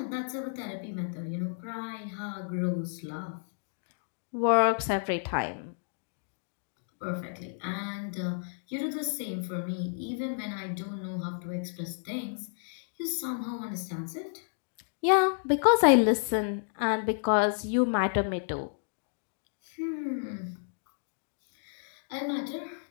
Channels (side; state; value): right; silent; digital silence